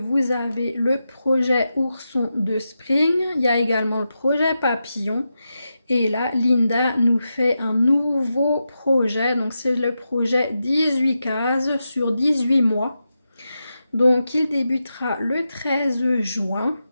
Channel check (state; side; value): inverted; both; correlation -0.89